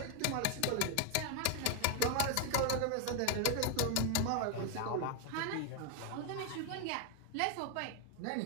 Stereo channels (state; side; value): different; both; correlation 0.01